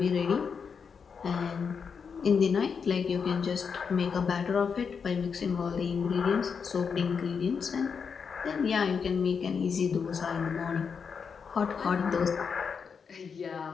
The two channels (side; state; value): right; quieter; 6.1 dB